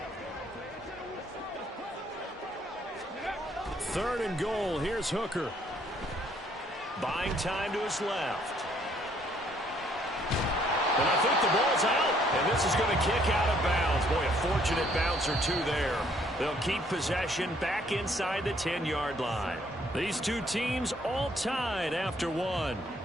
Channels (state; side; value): normal; both; correlation 0.65